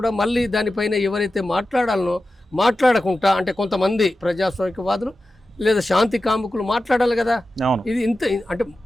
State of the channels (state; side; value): normal; both; correlation 0.93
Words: మళ్ళీ దానిపైన ఎవరైతే మాట్లాడాలనో మాట్లాడకుండా, అంటే కొంతమంది ప్రజాస్వామికవాదులు లేదా శాంతి కాముకులు మాట్లాడాలి కదా. ఇది ఇంత అంటే